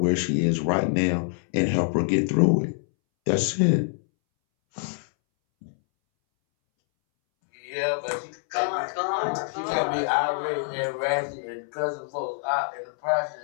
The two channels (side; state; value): right; silent; 61 dB below the other